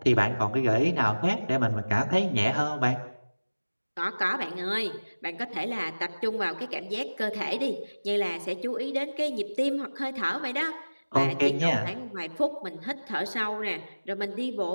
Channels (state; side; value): inverted; both; correlation -1.00